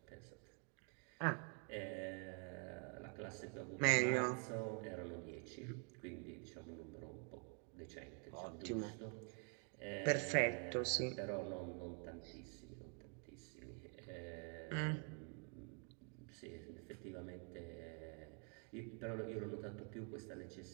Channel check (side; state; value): left; quieter; 39.1 dB